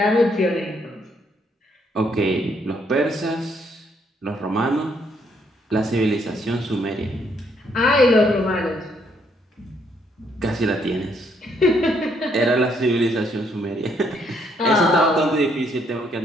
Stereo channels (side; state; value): both; normal; correlation 0.71